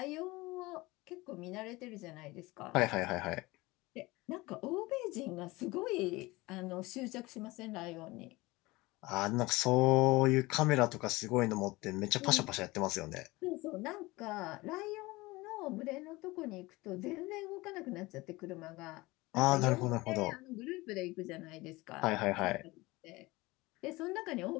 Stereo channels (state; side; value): quieter; right; 21.3 dB